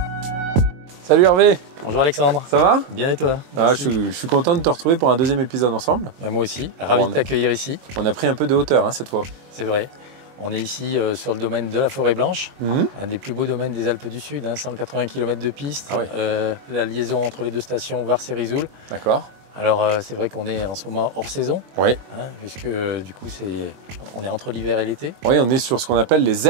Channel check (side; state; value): left; late; 22 ms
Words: Salut Hervé. Bonjour Alexandre. Ça va? Bien et toi? Je suis content de te retrouver pour un deuxième épisode ensemble. Moi aussi, ravi de t'accueillir ici. On a pris un peu de hauteur hein, cette fois. C'est vrai. On est ici sur le domaine de la Forêt Blanche, un des plus beaux domaines des Alpes du Sud, 180 km de piste, la liaison entre les deux stations Vars et Risoul. D'accord. Alors c'est vrai qu'on est en ce moment hors saison, puisque du coup on est entre l'hiver et l'été. Oui, on est sur ce qu'on appelle les